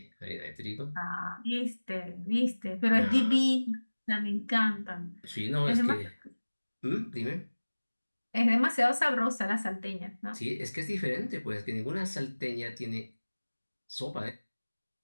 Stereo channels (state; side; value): inverted; both; correlation -1.00